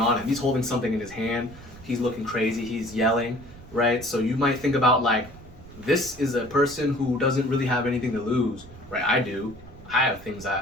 him. He's holding something in his hand. He's looking crazy. He's yelling, right? So you might think about like, this is a person who doesn't really have anything to lose, right? I do. I have things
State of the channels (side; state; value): right; noise; rumble, 19 dB below the sound